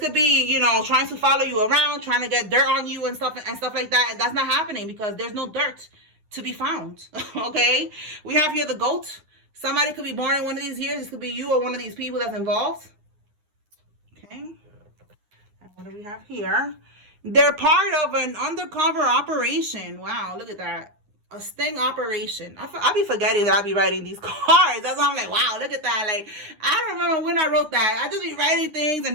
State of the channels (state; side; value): late; left; 9.8 ms